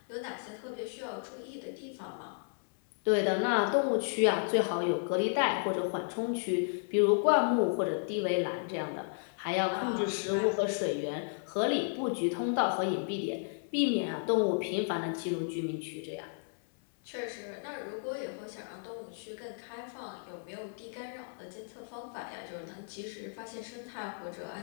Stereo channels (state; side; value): silent; right; 56 dB below the other